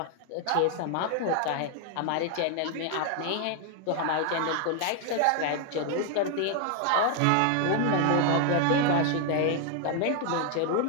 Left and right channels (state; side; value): different; both; correlation 0.00